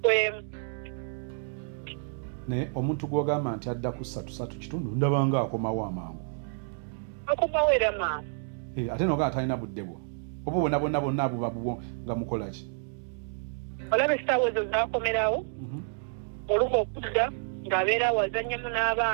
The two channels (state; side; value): silent; left; digital silence